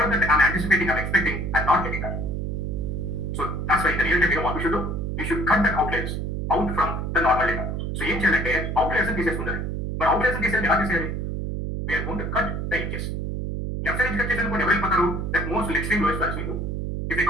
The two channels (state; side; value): noise; right; hum, 2 dB below the sound